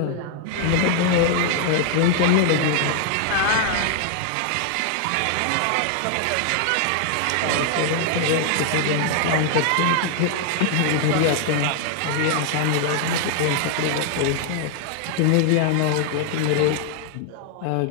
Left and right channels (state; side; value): different; both; correlation 0.00